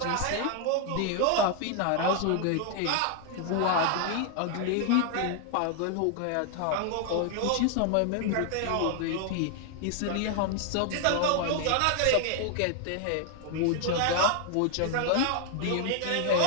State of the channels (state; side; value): different; both; correlation 0.00